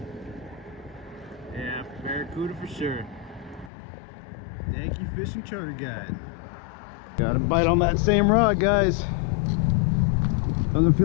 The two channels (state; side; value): drops out; right; at 3.7 s